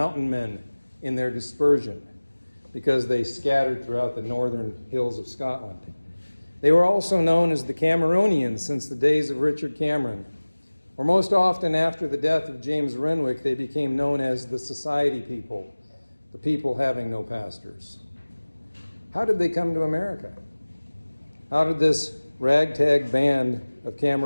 Men in their dispersion because they scattered throughout the northern hills of Scotland. They were also known as the Cameronians since the days of Richard Cameron, or most often after the death of James Renwick, they became known as the Society People, the people having no pastors. How did they come to America? How did this ragtag band of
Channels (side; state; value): both; inverted; correlation -1.00